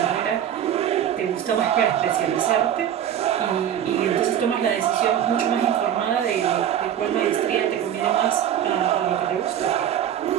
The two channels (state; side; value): quieter; left; 10.1 dB